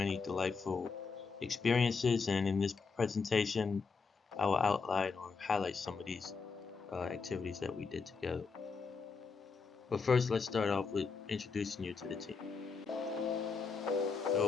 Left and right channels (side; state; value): right; quieter; 4.9 dB